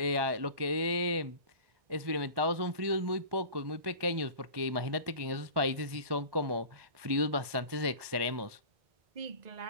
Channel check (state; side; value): late; left; 1.2 ms